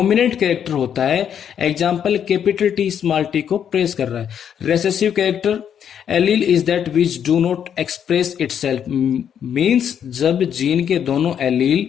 कैरेक्टर होता है। Example capital T small T को प्रेस कर रहा है। Recessive character allele is that which do not express itself, means जब जीन के दोनों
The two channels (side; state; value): right; quieter; 8.7 dB